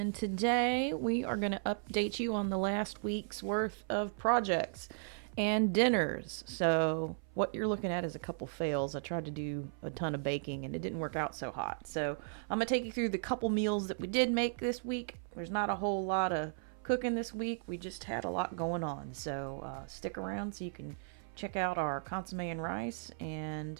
today we are going to update you on the last week's worth of projects and dinners. So what you're looking at is a couple fails. I tried to do a ton of baking and it didn't work out so hot. So I'm going to take you through the couple meals that we did make this week. There's not a whole lot of cooking this week. We just had a lot going on. So stick around so you can check out our consomme and rice. And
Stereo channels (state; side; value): silent; left; 54 dB below the other